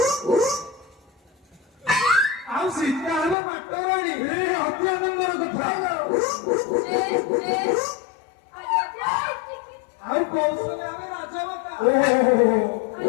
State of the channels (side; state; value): right; drops out; at 3.4 s